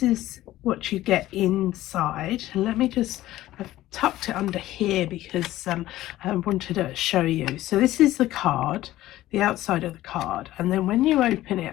is what you get inside. And I've tucked it under here because I wanted to show you. So this is the card, the outside of the card, and then when you open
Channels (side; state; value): right; quieter; 15.3 dB